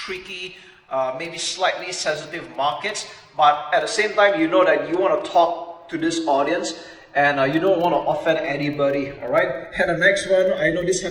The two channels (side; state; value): both; identical; correlation 1.00